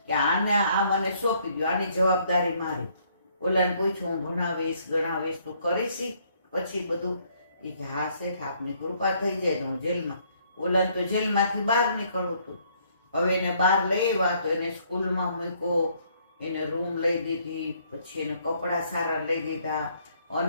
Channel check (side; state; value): both; inverted; correlation -0.66